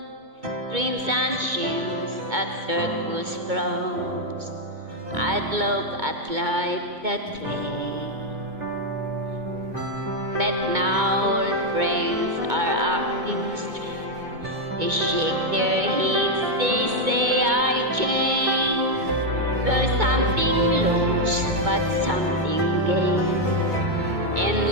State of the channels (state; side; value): late; left; 2.2 ms